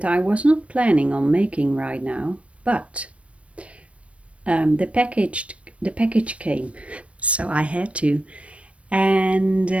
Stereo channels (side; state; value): left; late; 0.062 ms